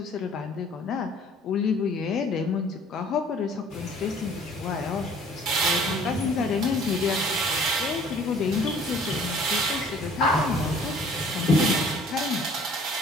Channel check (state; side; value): normal; both; correlation 0.54